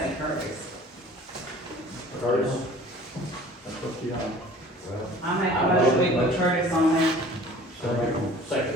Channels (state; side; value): normal; both; correlation 0.48